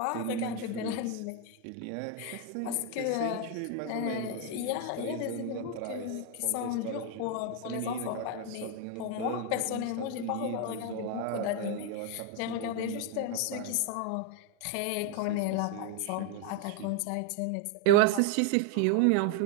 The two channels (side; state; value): both; different; correlation 0.01